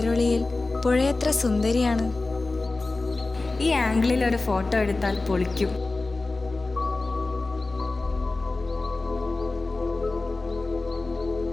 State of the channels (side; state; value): right; quieter; 3.3 dB